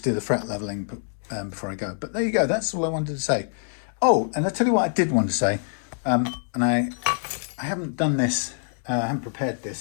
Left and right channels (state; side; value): silent; right; digital silence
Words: do the fret leveling before I go. But there you go, that's all I wanted to say. Oh, and I'll tell you what I did want to say, and I haven't done this, I haven't prepared